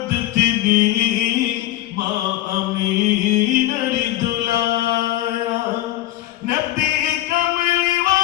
তিনি মা আমিনার দুলারা নবী কমলি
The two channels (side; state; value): right; quieter; 14.9 dB